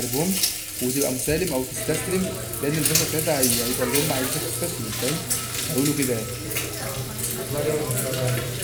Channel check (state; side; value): identical; both; correlation 1.00